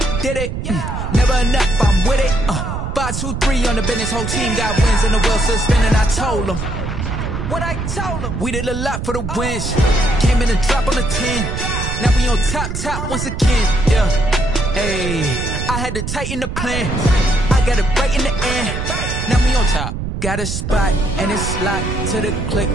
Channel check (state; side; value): noise; right; rumble, 4 dB below the sound